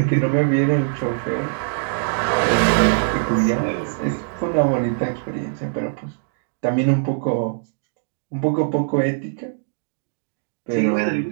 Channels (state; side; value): silent; left; digital silence